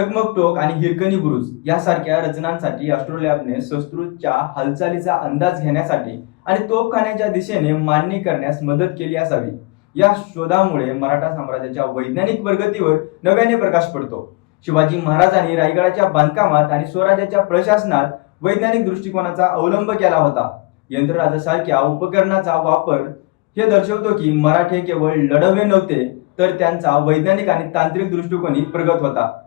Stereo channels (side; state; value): right; quieter; 25.1 dB